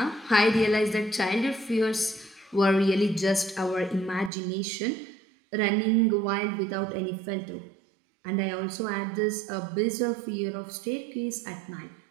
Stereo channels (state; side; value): drops out; left; at 4.3 s